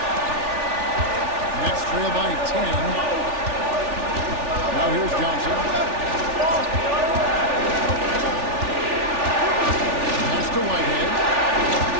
Nets trail by 10. Now here's Johnson. Pass to Whitehead.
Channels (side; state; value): left; late; 3.4 ms